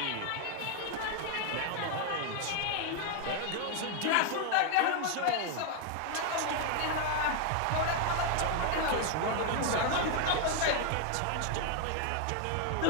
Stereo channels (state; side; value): different; both; correlation 0.00